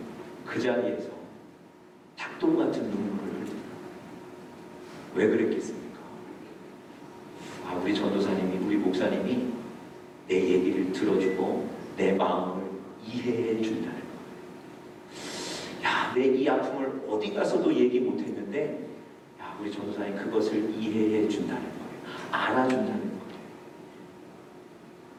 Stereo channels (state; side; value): identical; both; correlation 1.00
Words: 그 자리에서 닭똥 같은 눈물을 흘립니다. 왜 그랬겠습니까? 우리 전도사님이, 우리 목사님이 내 얘기를 들어주고 내 마음을 이해해 준다는 거예요. 야, 내 이 아픔을 어디 가서도 얘기 못했는데 야, 우리 전도사님 그것을 이해해 준다는 거예요. 알아준다는 거예요.